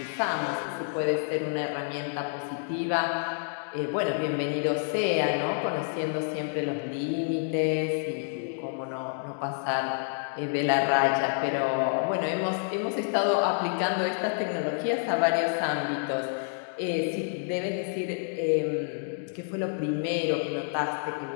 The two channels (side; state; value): right; silent; digital silence